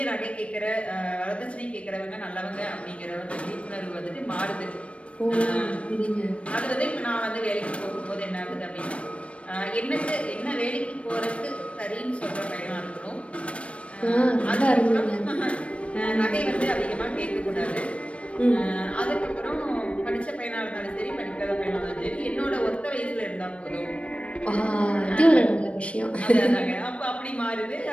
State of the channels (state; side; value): late; right; 0.062 ms